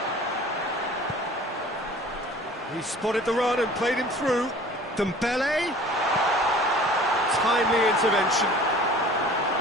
He spotted the run and played him through. Dembele. Timely intervention.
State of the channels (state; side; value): normal; both; correlation 0.46